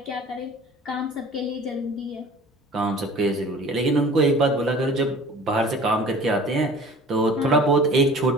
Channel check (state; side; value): normal; both; correlation 0.44